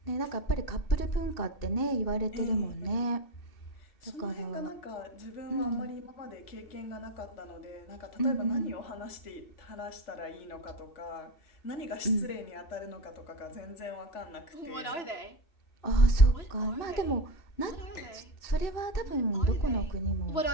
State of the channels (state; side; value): late; right; 2.7 ms